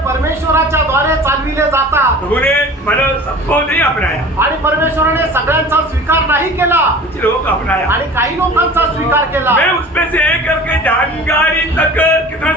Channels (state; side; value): normal; both; correlation 0.41